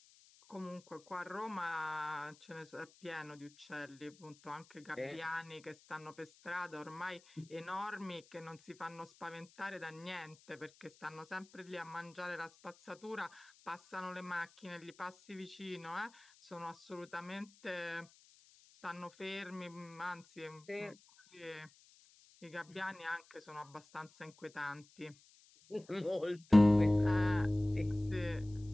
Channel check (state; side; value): noise; left; hiss, 26 dB below the sound